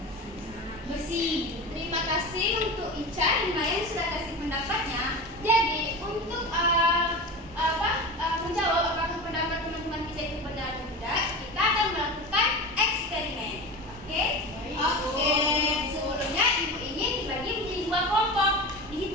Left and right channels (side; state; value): both; normal; correlation 0.28